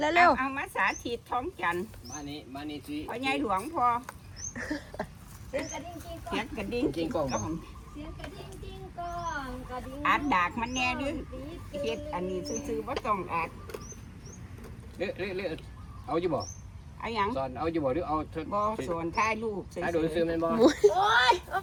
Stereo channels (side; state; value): both; identical; correlation 1.00